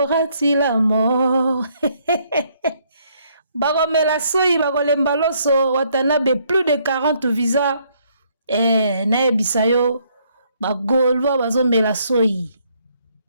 Tilamo bakomela soyi bakolemba loso watanabe plus de 40 visa naebisayo bagolwa bazomela soyi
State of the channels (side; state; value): both; inverted; correlation -0.69